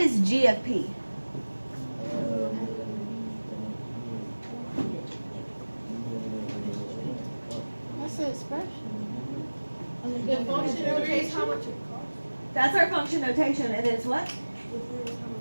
G of P? That's the expression. The function notation, how much it That's our function notation, and it's what?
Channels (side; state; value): both; inverted; correlation -1.00